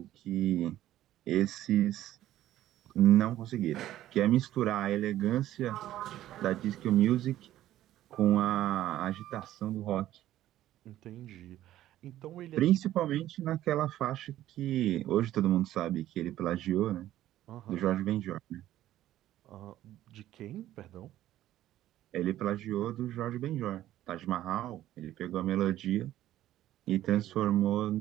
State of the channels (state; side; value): quieter; left; 13.5 dB